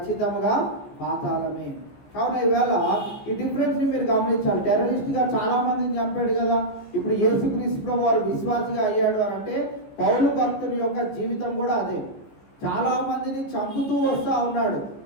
పాతాళమే. కావున ఈవేళ ఈ డిఫరెన్స్ని మీరు గమనించాలి. టెర్రరిస్ట్గా చాలా మందిని చంపాడు కదా, ఇప్పుడు యేసుక్రీస్తు ప్రభు వారు విశ్వాసిగా అయ్యాడు అని అంటే పౌలు భక్తుని యొక్క జీవితం కూడా అదే. చాలా మందిని చంపుతూ వస్తూ ఉన్నాడు,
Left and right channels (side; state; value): right; late; 15 ms